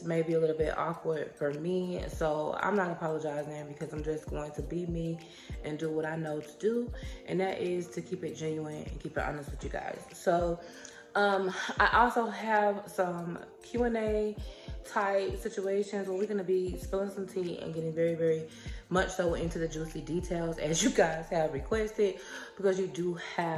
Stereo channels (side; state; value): both; identical; correlation 1.00